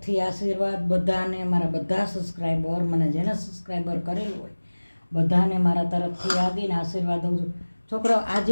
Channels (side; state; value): both; inverted; correlation -1.00